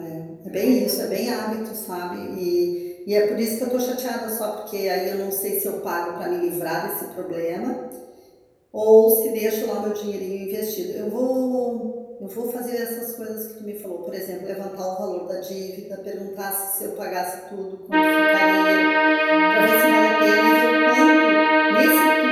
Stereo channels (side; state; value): both; identical; correlation 1.00